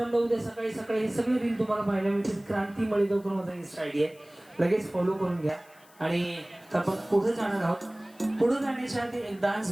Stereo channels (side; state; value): left; noise; hiss, 27 dB below the sound